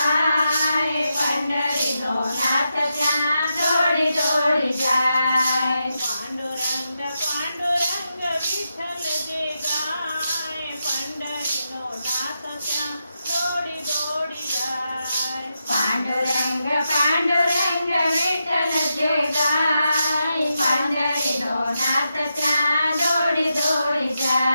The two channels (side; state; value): both; inverted; correlation -0.86